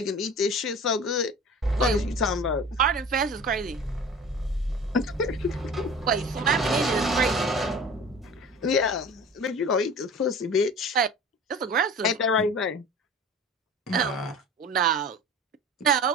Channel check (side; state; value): both; normal; correlation 0.39